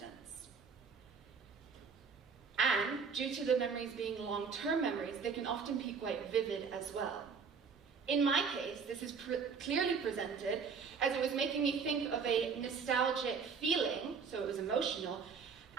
And due to the memories being long-term memories, they can often be quite vivid as well. In my case, this is clearly presented as it was making me think of a nostalgic feeling, so it was emotional,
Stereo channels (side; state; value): left; quieter; 5.8 dB